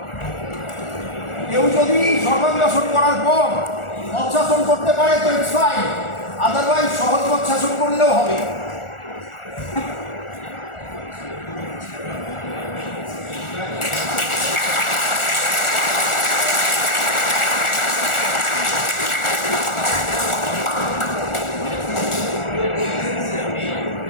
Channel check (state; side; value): late; right; 1.4 ms